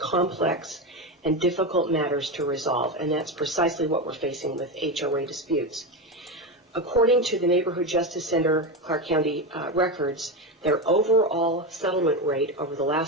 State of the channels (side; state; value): both; normal; correlation 0.16